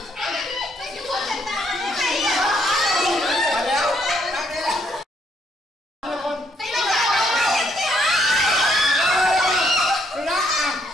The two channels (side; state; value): both; normal; correlation 0.71